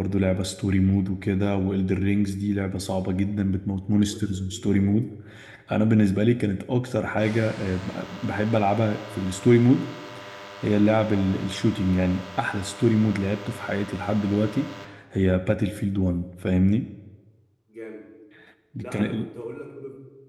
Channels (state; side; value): identical; both; correlation 1.00